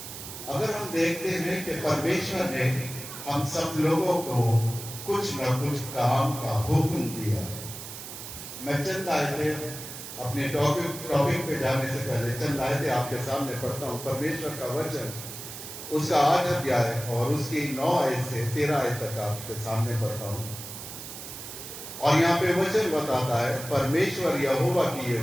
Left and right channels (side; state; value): right; noise; hiss, 10 dB below the sound